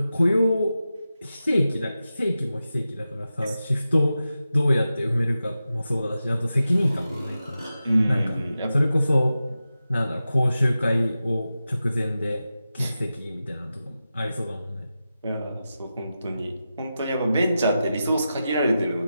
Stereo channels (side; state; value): both; inverted; correlation -0.92